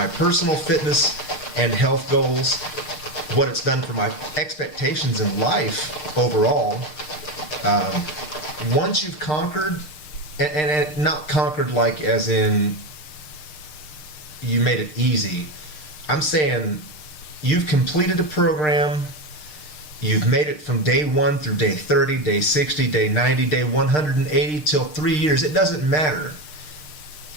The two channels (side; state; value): right; late; 6.6 ms